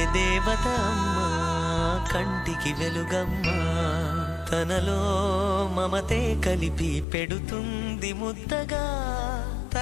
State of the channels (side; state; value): right; drops out; at 7.1 s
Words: దేవత అమ్మా, కంటికి వెలుగమ్మా. తనలో మమతే కలిపి పెడుతుంది ముద్దగా,